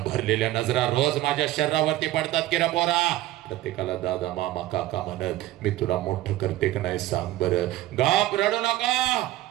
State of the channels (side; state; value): left; quieter; 15.4 dB